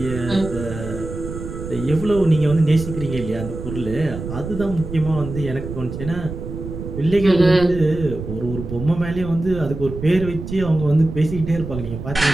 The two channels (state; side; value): noise; right; rumble, 8 dB below the sound